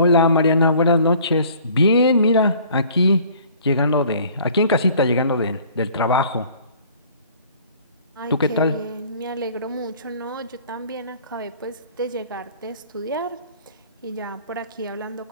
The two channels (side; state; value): both; inverted; correlation -0.53